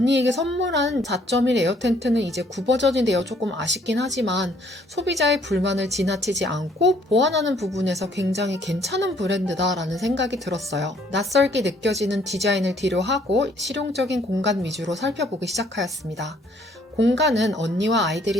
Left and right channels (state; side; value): normal; both; correlation 0.64